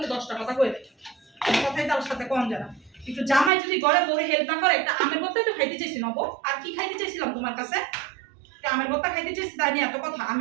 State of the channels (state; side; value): drops out; left; at 3.5 s